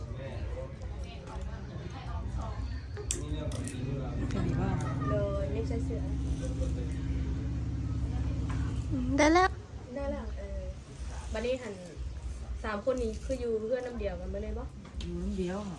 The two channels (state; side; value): identical; both; correlation 1.00